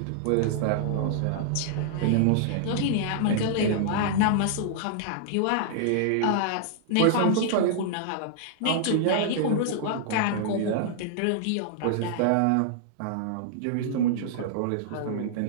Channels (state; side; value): different; both; correlation -0.01